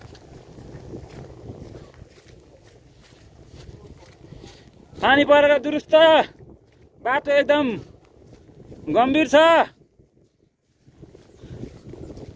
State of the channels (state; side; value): identical; both; correlation 1.00